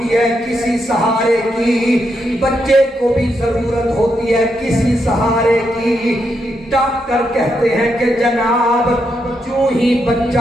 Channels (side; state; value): both; normal; correlation 0.81